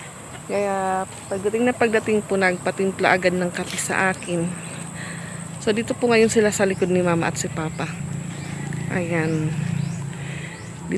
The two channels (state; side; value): identical; both; correlation 1.00